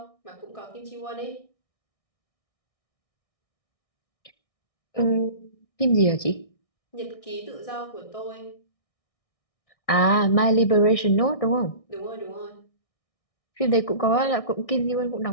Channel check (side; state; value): right; late; 1.6 ms